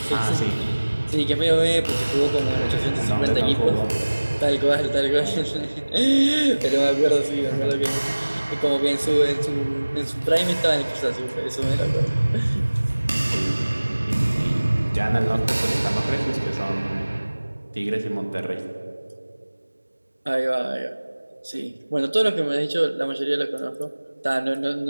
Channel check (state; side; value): inverted; both; correlation -1.00